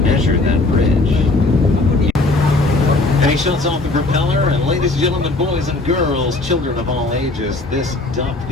that bridge. And he shuts off the propeller, and ladies and gentlemen, boys and girls, children of all ages, this duck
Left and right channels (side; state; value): right; quieter; 3.1 dB